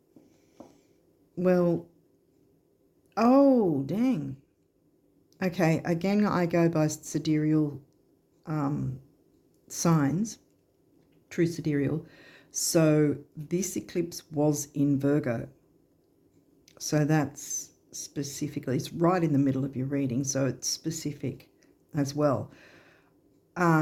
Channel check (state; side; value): identical; both; correlation 1.00